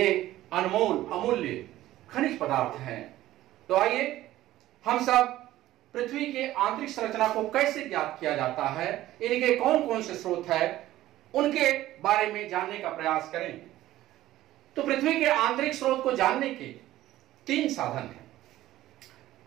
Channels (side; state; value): left; quieter; 14.9 dB